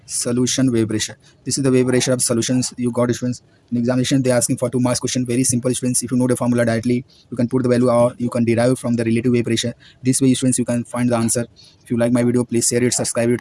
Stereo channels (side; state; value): both; identical; correlation 1.00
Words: solution wave pressure. This is the wave pressure of solutions you got, students. In examination, they are asking for 2 marks question. Very simple, students. If you know the formula directly, you can put the value or you can derive from the relative wave pressure. This way, students, you can find the answer. If you like my video, please share it, subscribe